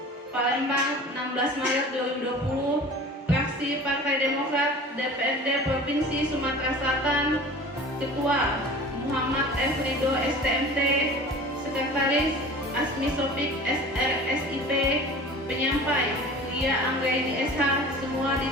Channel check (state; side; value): normal; both; correlation 0.40